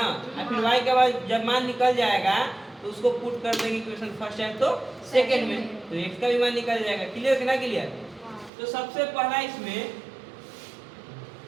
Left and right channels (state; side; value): drops out; left; at 8.5 s